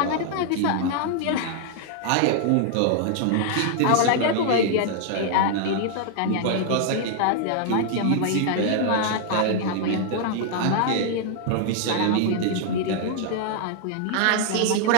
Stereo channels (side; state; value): both; different; correlation 0.00